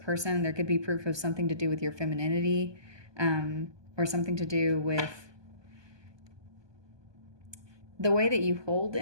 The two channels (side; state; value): left; late; 1.2 ms